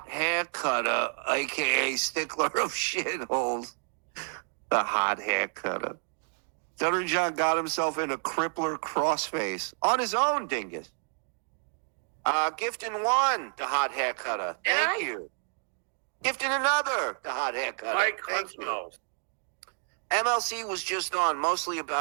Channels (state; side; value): silent; left; 58 dB below the other